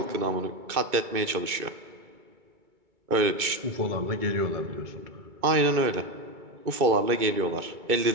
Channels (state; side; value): late; left; 2.3 ms